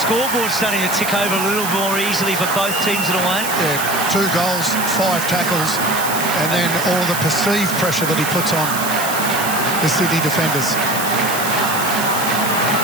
starting to tick over a little more easily for both teams in a way. Yeah, 2 goals, 5 tackles, and then all the perceived pressure that he puts on. the Sydney defenders.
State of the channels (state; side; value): noise; right; hiss, 5 dB below the sound